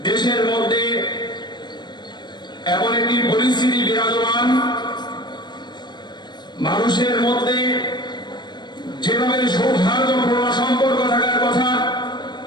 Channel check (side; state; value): right; late; 0.21 ms